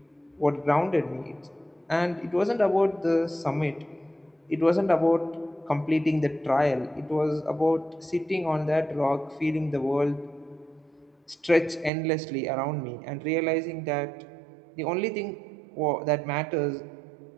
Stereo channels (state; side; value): drops out; left; at 11.9 s